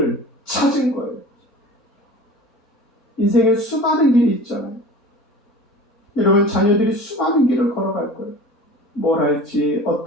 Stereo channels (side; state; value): both; normal; correlation 0.39